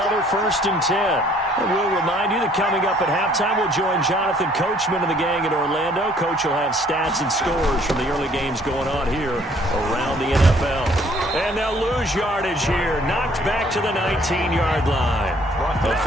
1st and 10. And we'll remind you that coming up at halftime, we'll join Jonathan Coachman and the gang in Orlando. Coach will have stats and scores from the early games going on here around the NFL. And they'll lose yardage here. Knocked back to the 19-yard line.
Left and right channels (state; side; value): normal; both; correlation 0.60